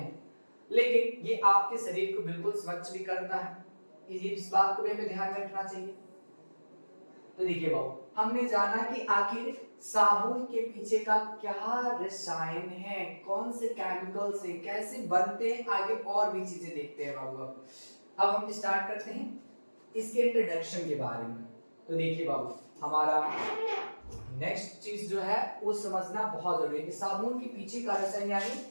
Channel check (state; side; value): inverted; both; correlation -1.00